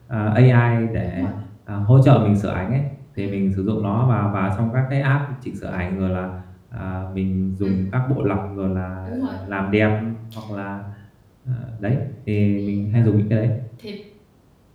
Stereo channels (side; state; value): both; identical; correlation 1.00